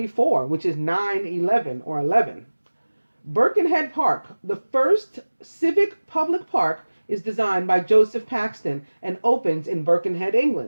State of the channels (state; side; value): inverted; both; correlation -1.00